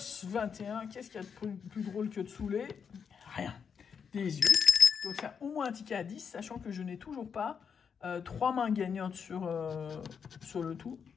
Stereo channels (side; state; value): right; quieter; 6.7 dB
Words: 21. Qu'est-ce qu'il y a de plus drôle que de saouler? Rien. 18. Donc c'est au moins un ticket à 10, sachant que je n'ai toujours pas 3 mains gagnantes sur le tout.